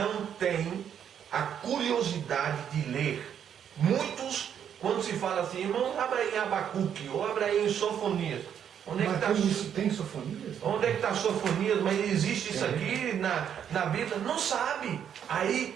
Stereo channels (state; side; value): quieter; left; 8.8 dB